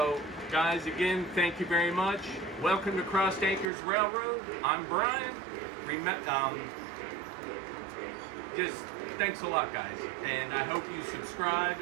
guys, again, thank you very much. Welcome to Cross Anchors Railroad. I'm Brian. Just thanks a lot, guys, and I hope you subscribe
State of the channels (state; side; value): drops out; left; at 3.7 s